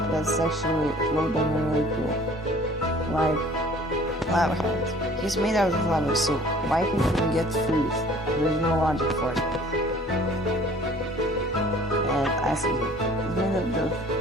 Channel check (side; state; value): both; normal; correlation 0.51